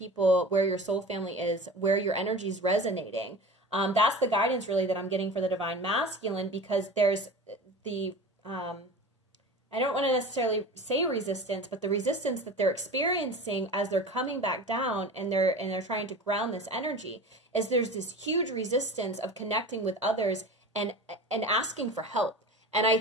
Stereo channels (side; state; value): both; normal; correlation 0.34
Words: where your soul family is, where your energy is resonating. That's the guidance really that I'm getting for the divine masculine, because there's the, I don't want to necessarily say resistance, but the resistance that they're experiencing as they're coming back down and they're trying to ground this energy, is there's this huge resistance of connecting with others and asking for help. And I